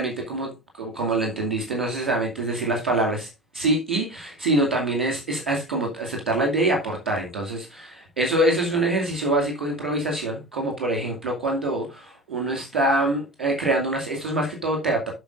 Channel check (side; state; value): both; normal; correlation 0.30